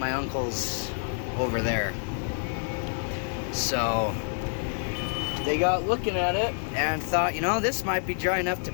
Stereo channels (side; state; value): right; silent; 58 dB below the other